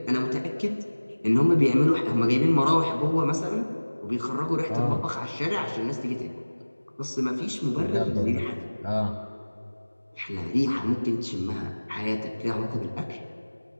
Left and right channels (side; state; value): both; inverted; correlation -1.00